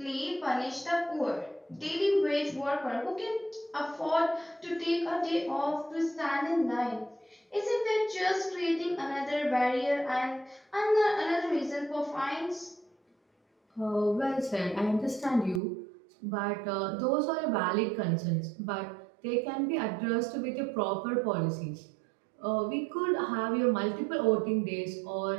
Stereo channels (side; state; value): left; drops out; at 15.6 s